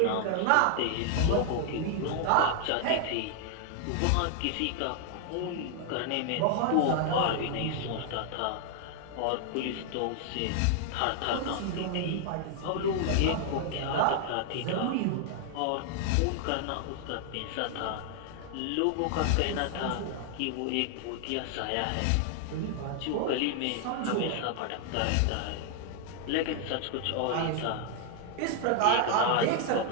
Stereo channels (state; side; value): different; both; correlation 0.00